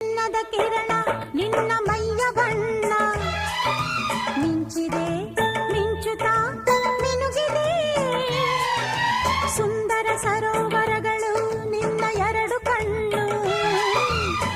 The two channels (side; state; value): both; identical; correlation 1.00